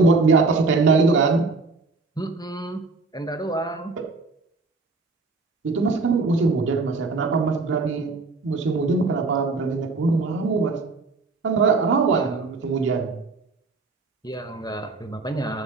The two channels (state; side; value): quieter; left; 3.8 dB